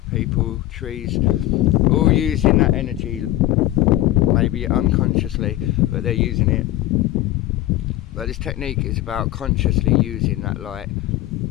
people, trees, all using that energy, maybe unconsciously, but they're using it. But this technique is about consciously using that light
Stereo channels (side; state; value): right; quieter; 15.5 dB